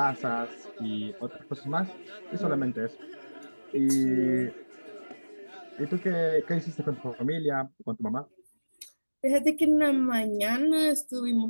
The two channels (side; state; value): both; inverted; correlation -1.00